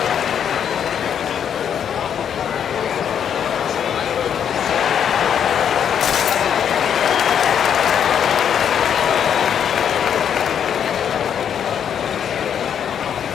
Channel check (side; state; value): right; quieter; 8.5 dB